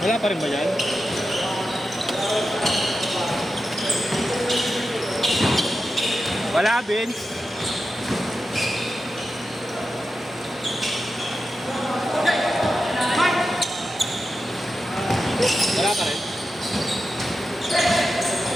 Wala pa rin ba yan? Wala, Vince. Wala pa rin.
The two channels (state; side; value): normal; both; correlation 0.90